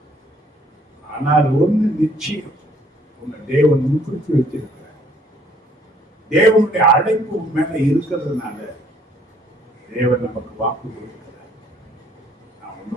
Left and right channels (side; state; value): both; normal; correlation 0.62